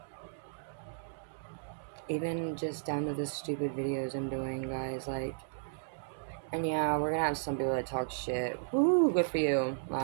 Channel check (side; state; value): left; silent; digital silence